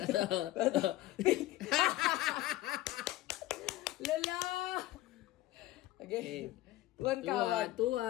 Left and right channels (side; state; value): right; quieter; 16.3 dB